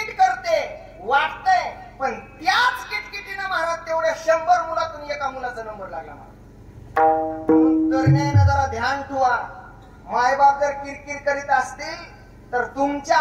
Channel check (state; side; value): identical; both; correlation 1.00